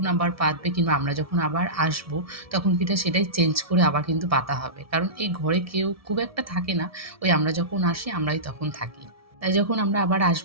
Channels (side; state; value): left; late; 1.7 ms